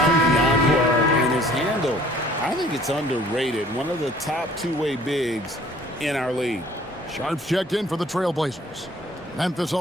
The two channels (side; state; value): both; normal; correlation 0.54